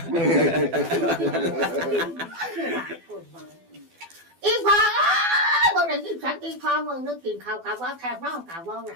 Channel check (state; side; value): late; left; 12 ms